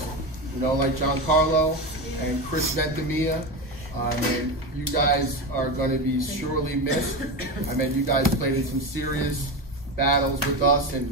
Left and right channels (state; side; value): normal; both; correlation 0.19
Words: like Giancarlo and Chris Ventimiglia. And you guys are going to be surely missed. I mean, you guys played in some serious battles with us and